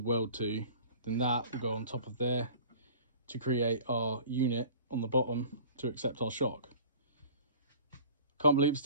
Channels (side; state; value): both; inverted; correlation -0.44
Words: weld to, then that will go on top of there to create our unit on the bottom to accept our shock. Can't believe it